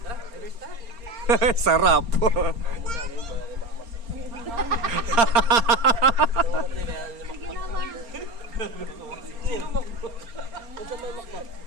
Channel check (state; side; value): late; left; 4.3 ms